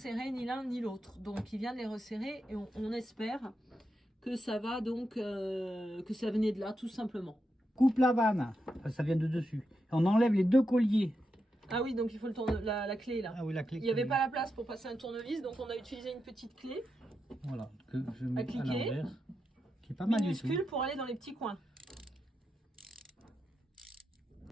ni l'un ni l'autre. Donc il vient de les resserrer et on espère que ça va donc, que ça venait de là, tout simplement. Coupe la vanne, ça vient de dessus. On enlève les deux colliers. Ah oui, donc il faut la clé là. Ah oui, la clé. Il n'y avait pas la place pour passer un tournevis, donc on a utilisé une petite clé. Voilà, que je mets à cliquer, l'envers, qui est pas mal du tout. Minuscule pour aller dans les petits coins.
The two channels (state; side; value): normal; both; correlation 0.86